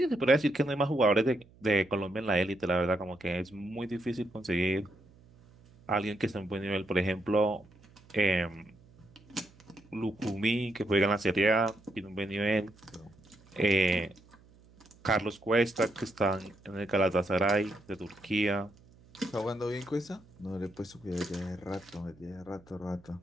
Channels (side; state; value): right; noise; hum, 26 dB below the sound